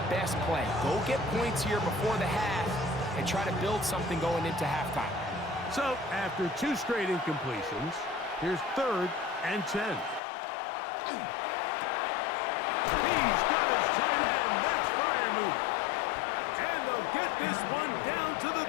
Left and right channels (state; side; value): drops out; right; at 10.2 s